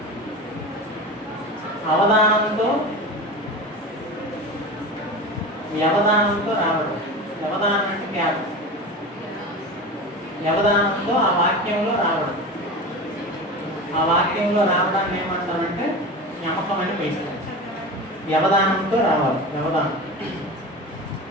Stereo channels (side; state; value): both; normal; correlation 0.29